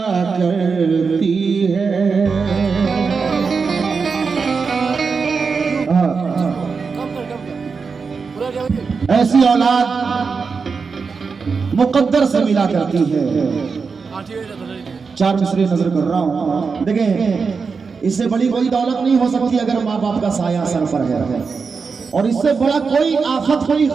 करती है। ऐसी औलाद मुक़द्दर से मिला करती है। चार मिसरे नजर कर रहा हूँ, देखें इससे बड़ी कोई दौलत नहीं हो सकती अगर माँ बाप का साया सर पर है, और इससे बड़ा कोई आफत कोई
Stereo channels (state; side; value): quieter; left; 5.1 dB